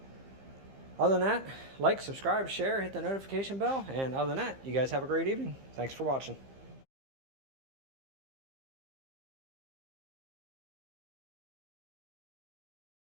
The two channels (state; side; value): late; left; 15 ms